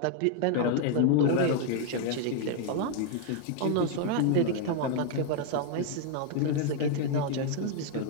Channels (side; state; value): both; different; correlation 0.00